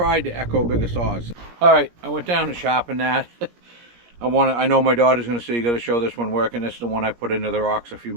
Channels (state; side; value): late; left; 17 ms